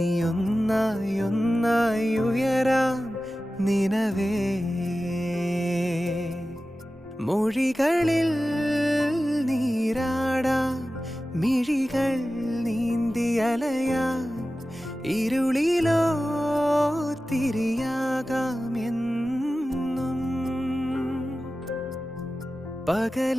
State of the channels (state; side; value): normal; both; correlation 0.95